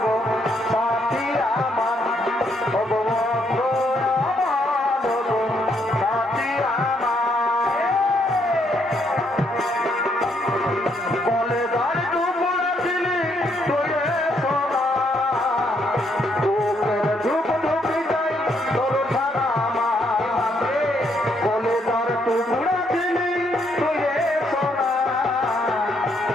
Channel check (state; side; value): normal; both; correlation 0.73